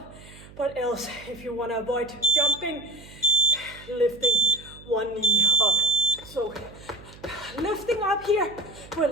but else if you want to avoid jumping, lifting one knee up. So lifting up here,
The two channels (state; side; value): noise; right; hum, 20 dB below the sound